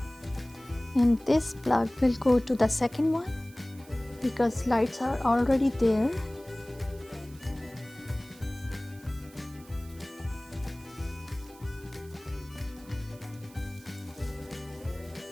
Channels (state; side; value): noise; right; hiss, 23 dB below the sound